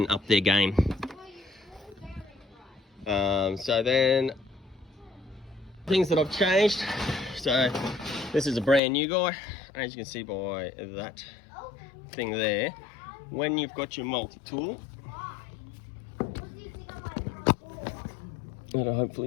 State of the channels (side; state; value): right; drops out; at 8.8 s